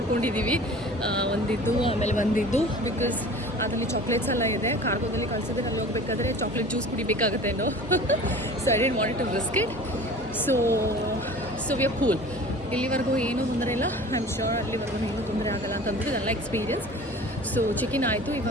ಒಂದಿದ್ದು ಆಮೇಲೆ ಒಂದಿದ್ದು, ಬಿಕಾಸ್ ಅದರಲ್ಲಿ ಚಾಕ್ಲೇಟ್ಸ್ ಎಲ್ಲ ಇದೆ. ಕಾರ್ಗೋದಲ್ಲಿ ಕಳಿಸಿದ್ರೆ ಅಲ್ಲಿ ಹೋಗ್ಬೇಕಾದ್ರೆ ಚಾಕ್ಲೇಟ್ ಜ್ಯೂಸ್ ಕುಡಿಬೇಕಾಗತ್ತೇನೋ. So I didn't want to risk it. So we are cool. ಇಲ್ಲಿವರೆಗೂ ಏನೂ ತೊಂದರೆ ಇಲ್ಲ. ಐ ಆಮ್ ಶ್ಯೂರ್ ಅಲ್ಲಿವರೆಗೂ ಏನೂ ತೊಂದರೆ ಆಗಲ್ಲ ಅಂತಂದ್ಬಿಟ್ಟು ಇದೆಲ್ಲ ಎಕ್ಸ್ಪೀರಿಯನ್ಸ್. ಸೊ ಚೆಕಿನ್ ಆಯಿತು.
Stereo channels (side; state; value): both; normal; correlation 0.41